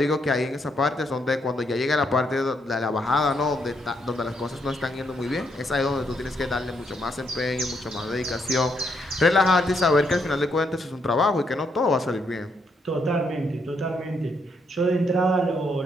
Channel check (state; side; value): normal; both; correlation 0.76